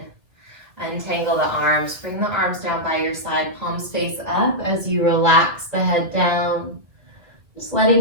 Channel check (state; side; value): late; left; 2.3 ms